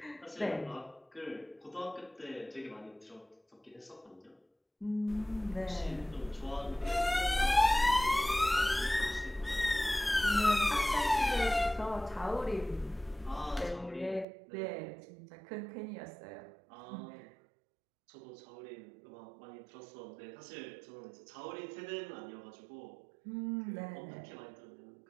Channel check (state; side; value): drops out; left; at 14.2 s